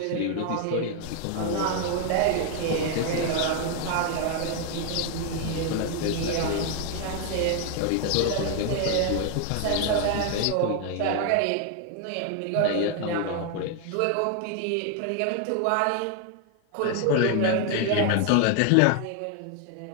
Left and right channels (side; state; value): both; different; correlation 0.01